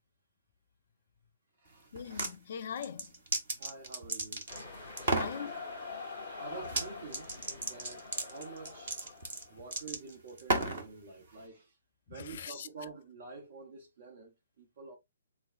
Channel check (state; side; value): inverted; both; correlation -0.56